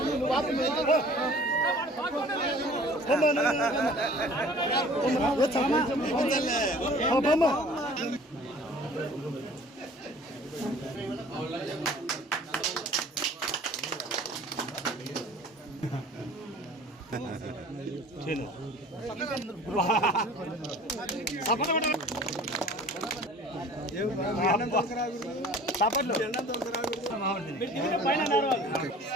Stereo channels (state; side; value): normal; both; correlation 0.48